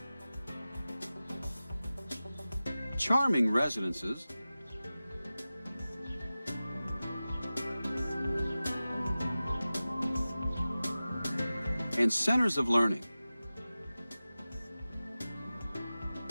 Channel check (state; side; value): inverted; both; correlation -0.96